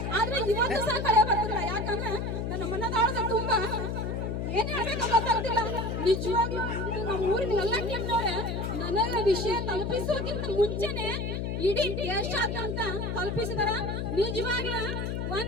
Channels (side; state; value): left; noise; hum, 2 dB below the sound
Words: ಆದ್ರೆ ಇವತ್ತು ಸಹ ಕಳೆ ಬರ್ತಿಲ್ಲ. ಯಾಕಂದ್ರೆ ನನ್ನ ಮನದಾಳದ ತುಂಬಾ ಏನ್ ಹೇಳ್ಬೇಕು ಗೊತ್ತಾಗ್ತಿಲ್ಲ. ನಿಜವಾಗ್ಲೂ ನಮ್ಮ ಊರಿನ ಎಲ್ಲ ಟೀಮ್ನವ್ರೆ ನನಗೆ ವಿಷಯ ತಲುಪಿಸೋಕ್ಕಿಂತ ಮುಂಚೆನೆ ಇಡೀ ದೇಶಾದ್ಯಂತ ತಲುಪಿಸಿದಾರ. ನಿಜವಾಗ್ಲೂ